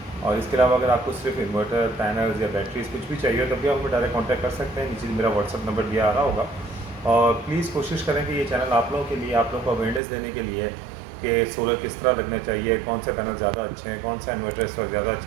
और इसके अलावा अगर आपको सिर्फ इन्वर्टर, पैनल्स या बैटरीज कुछ भी चाहिए तब भी आप हमें डायरेक्ट कॉन्टैक्ट कर सकते हैं। नीचे मेरा व्हाट्सअप नंबर दिया आ रहा होगा। और प्लीज़ कोशिश करें कि ये चैनल आप लोगों के लिए, आप लोगों को अवेयरनेस देने के लिए कि सोलर किस तरह लगना चाहिए, कौन से पैनल ज़्यादा अच्छे हैं, कौन सा इन्वर्टर इस वक्त ज़्यादा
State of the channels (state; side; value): drops out; left; at 10.0 s